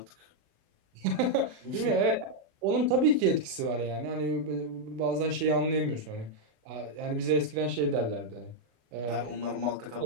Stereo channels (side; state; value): left; late; 36 ms